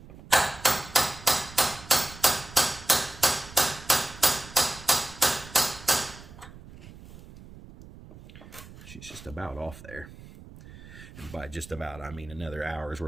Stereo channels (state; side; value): noise; right; rumble, 17 dB below the sound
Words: She's just about off there. And by just about, I mean another hour's